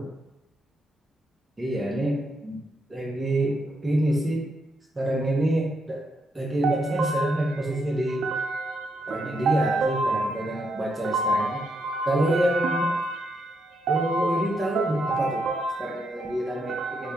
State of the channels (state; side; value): normal; both; correlation 0.79